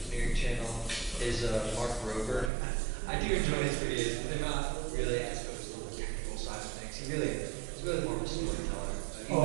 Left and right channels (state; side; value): drops out; left; at 2.5 s